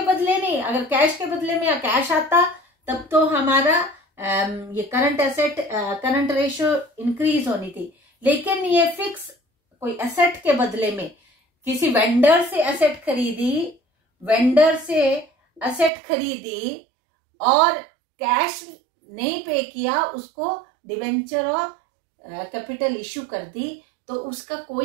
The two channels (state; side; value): drops out; left; at 15.9 s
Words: बदले नहीं. अगर कैश के बदले में या कैश आता तब तो हमारा ये current asset current ratio increase होनी थी, लेकिन ये फिक्स कोई एसेट के बदले में किसी वेंडर से एसेट खरीदी, वेंडर से एसेट खरीदी और कैश नहीं पे किया, उसको डिबेंचर और कैपिटल इश्यू कर दी, तो उसका